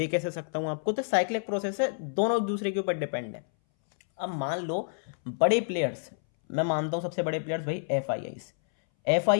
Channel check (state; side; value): silent; right; 59 dB below the other